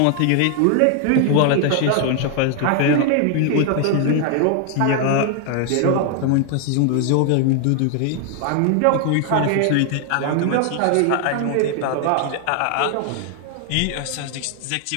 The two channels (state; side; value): different; both; correlation 0.00